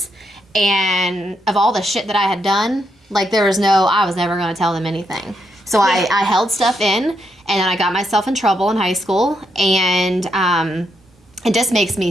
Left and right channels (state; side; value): normal; both; correlation 0.79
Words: And of all the shit that I had done, like, I was never going to tell them anything. So I held stuff in, and then I got myself in trouble in high school, and it just makes